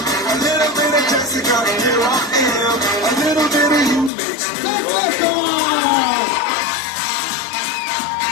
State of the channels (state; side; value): drops out; right; at 4.1 s